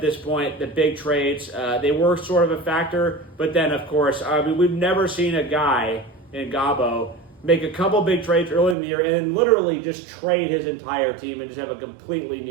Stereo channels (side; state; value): left; drops out; at 8.8 s